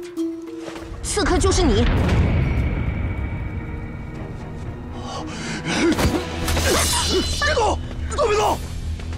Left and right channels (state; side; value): identical; both; correlation 1.00